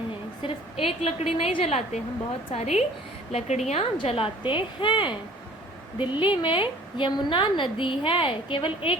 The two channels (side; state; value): both; normal; correlation 0.50